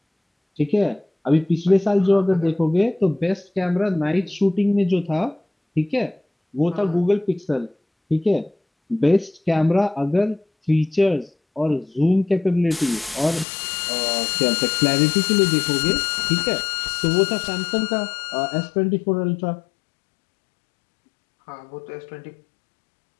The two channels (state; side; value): drops out; right; at 13.5 s